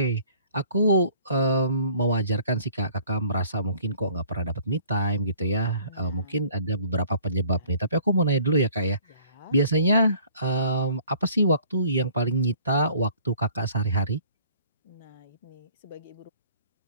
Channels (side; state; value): both; inverted; correlation -0.54